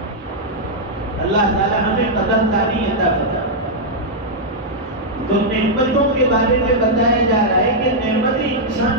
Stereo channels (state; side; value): normal; both; correlation -0.05